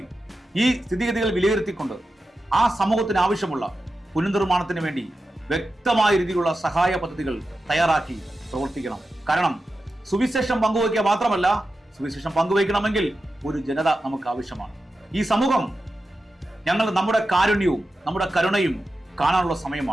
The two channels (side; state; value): both; normal; correlation 0.91